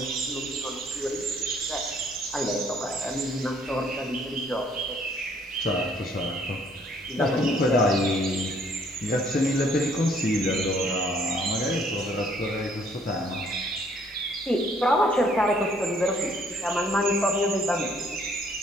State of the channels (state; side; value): normal; both; correlation 0.63